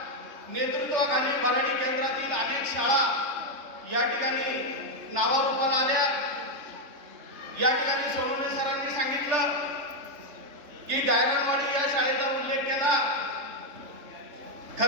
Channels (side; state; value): left; late; 3.3 ms